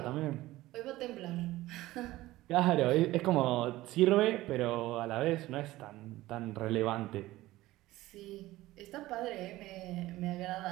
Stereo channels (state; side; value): quieter; left; 17.2 dB